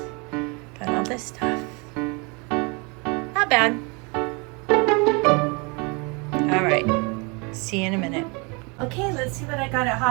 Got all this stuff. Not bad. All right, see you in a minute. Okay, let's see what I got at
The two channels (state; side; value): quieter; left; 30.4 dB